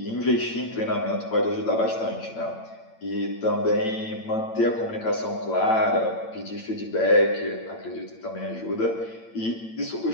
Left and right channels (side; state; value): right; late; 8.9 ms